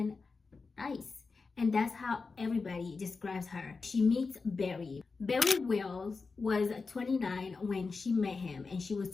nice. And that's how everybody describes her. She meets Barry. Barry Wells was 29 when she met him, and she was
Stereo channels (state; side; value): quieter; right; 4.4 dB